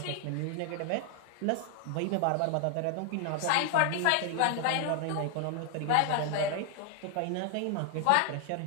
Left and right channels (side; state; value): both; different; correlation 0.00